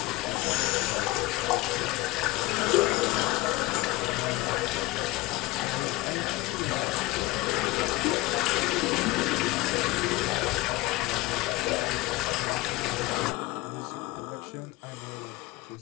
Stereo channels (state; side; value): quieter; right; 19.7 dB